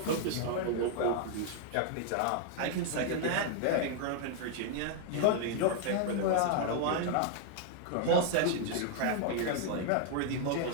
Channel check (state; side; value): different; both; correlation 0.00